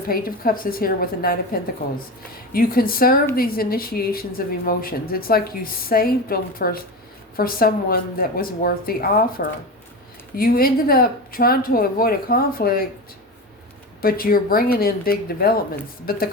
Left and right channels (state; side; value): normal; both; correlation 0.24